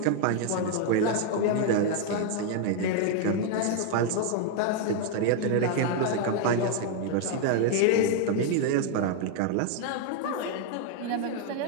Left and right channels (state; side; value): different; both; correlation 0.00